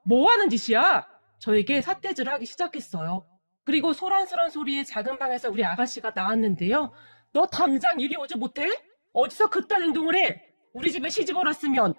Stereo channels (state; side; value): inverted; both; correlation -1.00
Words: 뭐 하는 짓이야? 저에게 삿대질을 하기 시작했어요. 그리고 소란스런 소리에 작은 방에서 우리 아가씨가 나왔는데요. 너 당장 이리 오지 못해? 어디서 그딴 행동을 해? 우리 집에 시집을 왔으면